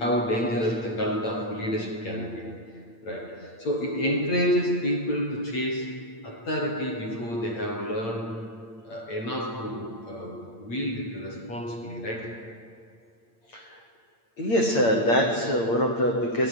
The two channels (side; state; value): right; late; 8.8 ms